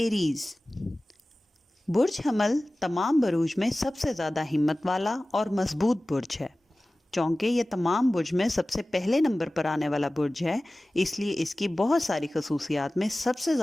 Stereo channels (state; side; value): normal; both; correlation 0.97